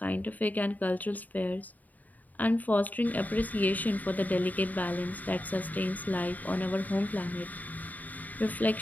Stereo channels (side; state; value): right; late; 0.079 ms